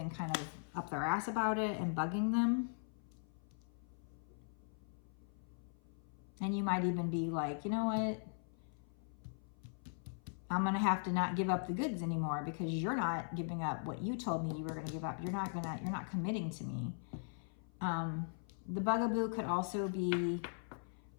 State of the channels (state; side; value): silent; right; 51 dB below the other